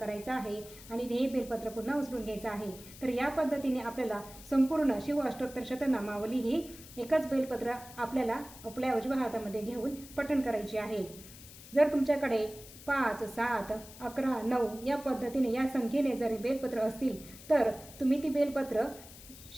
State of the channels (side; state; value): left; noise; hiss, 17 dB below the sound